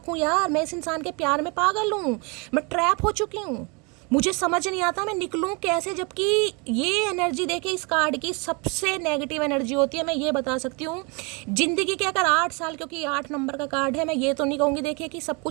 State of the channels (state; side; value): quieter; left; 31.1 dB